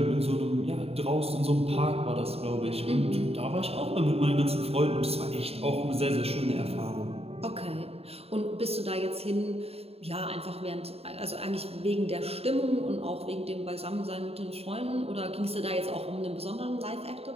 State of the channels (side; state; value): left; late; 0.29 ms